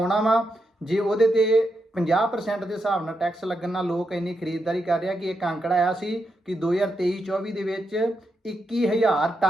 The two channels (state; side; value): normal; both; correlation 0.84